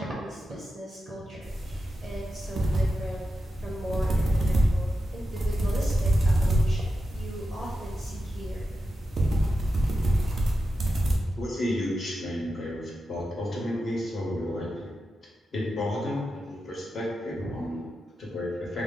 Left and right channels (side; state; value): both; normal; correlation 0.90